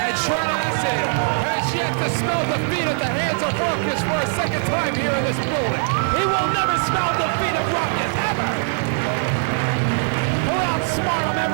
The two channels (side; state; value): left; silent; 63 dB below the other